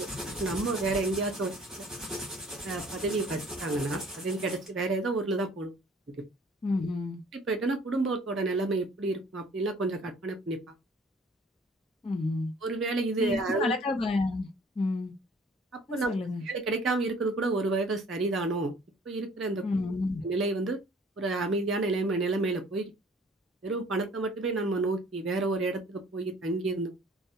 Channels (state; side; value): normal; both; correlation 0.54